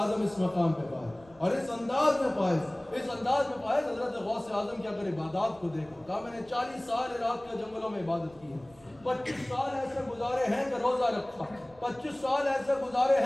اس مقام پہ پائے اور اس انداز میں پائے، اس انداز میں پائے. حضرت غوث اعظم کی اگر عبادات کو دیکھو، کہا میں نے 40 سال عراق کے جنگلوں میں عبادت کی ہے، 25 سال ایسے گزارے ہیں کہ روزہ رکھا، 25 سال ایسے گزارے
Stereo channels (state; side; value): noise; right; rumble, 26 dB below the sound